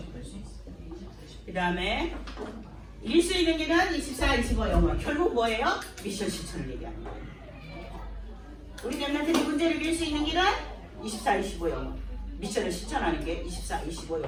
수 있어요. 그 다음에 일수 있는 길은 24, 25 영원. 결국 뭐예요? 미션 실천을 얘기하는 거예요. 우리 랩런트들이 문제를 이길 수 있는 길은 24, 25 영원. 미션을 실천하는 게 24, 25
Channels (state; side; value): identical; both; correlation 1.00